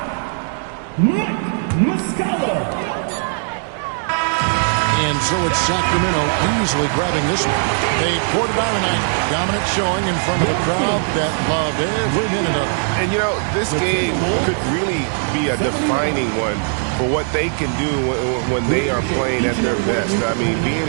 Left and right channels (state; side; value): silent; left; 61 dB below the other